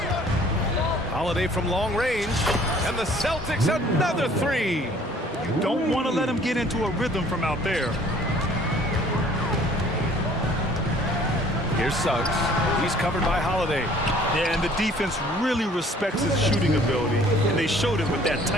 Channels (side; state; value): both; normal; correlation 0.55